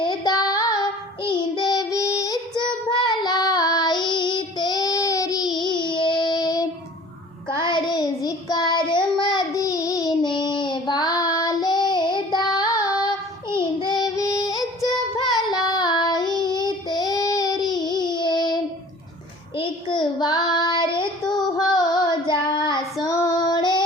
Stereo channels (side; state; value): both; normal; correlation 0.47